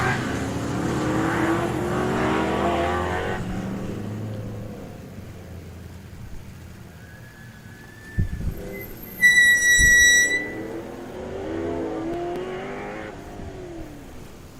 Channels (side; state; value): both; identical; correlation 1.00